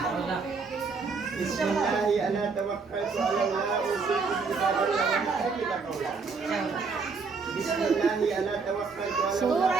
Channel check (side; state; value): left; quieter; 4.8 dB